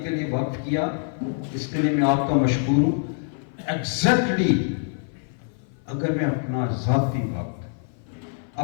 کے لیے وقف کیا، اس کے لیے میں آپ کا مشکور ہوں۔ ایگزیکٹلی اگر میں اپنا ذاتی وقت،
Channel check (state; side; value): silent; right; 56 dB below the other